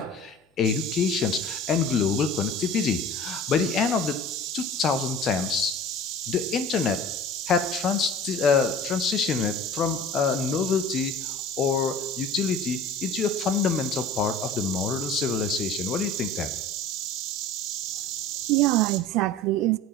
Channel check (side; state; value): both; normal; correlation 0.40